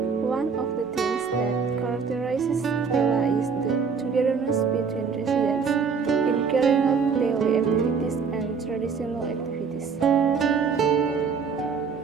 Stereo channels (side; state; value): left; quieter; 5.7 dB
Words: One of the things that characterizes Pela is the togetherness between residents in carrying out daily activities and traditional activities.